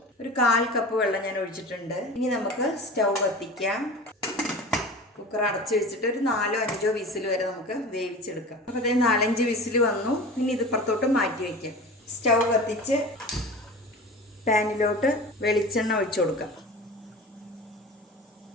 ഒരു 1/4 കപ്പ് വെള്ളം ഞാൻ ഒഴിച്ചിട്ടുണ്ട്. ഇനി നമുക്ക് സ്റ്റൗ കത്തിക്കാം. കുക്കർ അടച്ചു വെച്ചിട്ട് ഒരു 4-5 വിസിൽ വരെ നമുക്ക് വേവിച്ചെടുക്കാം. അപ്പോൾ അതേ 4-5 വിസിൽ വന്നു. ഇനി ഇത് പുറത്തോട്ട് മാറ്റി വയ്ക്കാം. സ്റ്റൗ കത്തിച്ച് പാനിലോട്ട് വെളിച്ചെണ്ണ ഒഴിച്ചു കൊടുക്കാം.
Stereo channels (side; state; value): both; normal; correlation 0.35